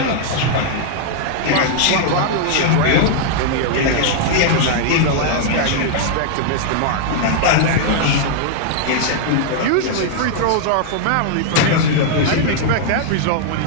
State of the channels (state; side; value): different; both; correlation -0.01